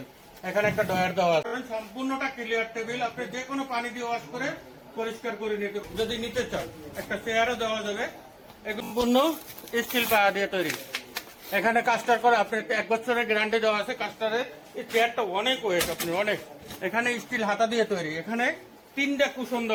এখানে একটা ডয়ার দেওয়া আছে। সম্পূর্ণটা ক্লিয়ার টেবিল, আপনি যে কোনো পানি দিয়ে ওয়াশ করে পরিষ্কার করে নিতে, যদি নিতে চান একটা চেয়ারও দেওয়া যাবে। সম্পূর্ণ স্টিল পায়া দিয়ে তৈরি। এখানে কাস্টার করে আপনি 1 বছরের গ্যারান্টি দেওয়া আছে কাস্টারের। এই চেয়ারটা অনেক ওয়েট, আপনি অনেক। এখানে স্টিল হাতা দিয়ে তৈরি, এখানে 3টা কুশন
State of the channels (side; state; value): both; identical; correlation 1.00